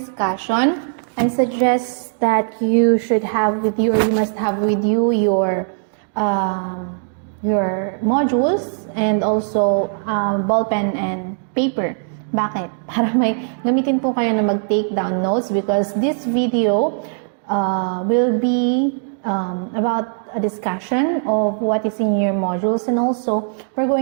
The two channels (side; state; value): left; silent; digital silence